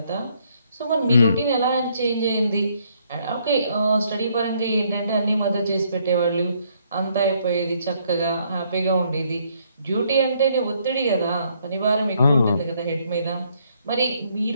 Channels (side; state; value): both; inverted; correlation -0.69